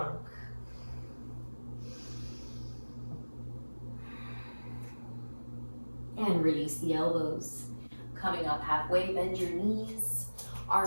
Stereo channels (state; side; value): inverted; both; correlation -1.00